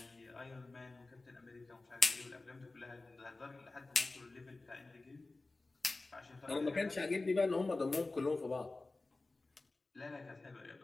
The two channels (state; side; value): quieter; right; 3.3 dB